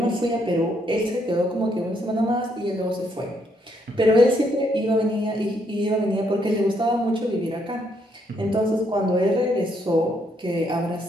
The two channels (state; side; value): normal; both; correlation 0.73